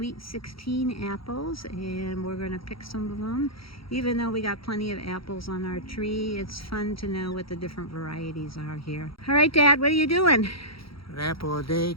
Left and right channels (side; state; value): right; late; 0.75 ms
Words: 16 apples, and we're going to pick some of them. Even though we got plenty of apples on our tree, it's fun to know what the different varieties are here. All right, Dad, what are you doing? An apple a day